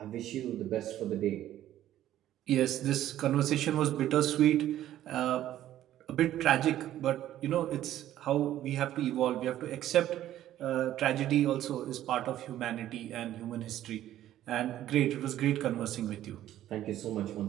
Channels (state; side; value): quieter; left; 12.7 dB